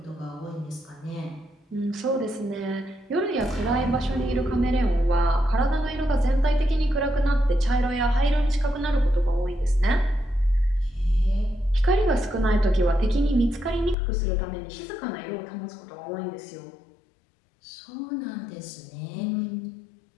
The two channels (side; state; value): right; drops out; at 14.0 s